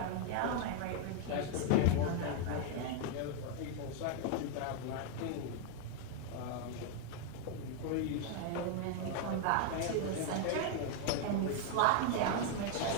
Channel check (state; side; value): different; both; correlation 0.00